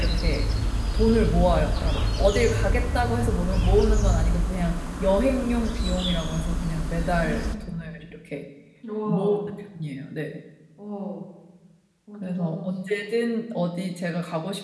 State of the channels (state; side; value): identical; both; correlation 1.00